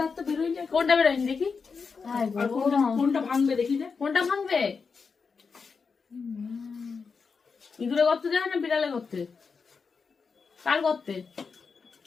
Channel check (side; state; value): right; quieter; 5.2 dB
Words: বেরোয়নি? কোনটা বেরোয়নি দেখি? কোনটা ভাঙবে দেখি? কোনটা ভাঙবে? ইঁদুরে গর্তে যায় না বিড়ালে গর্তে? কার গর্তে?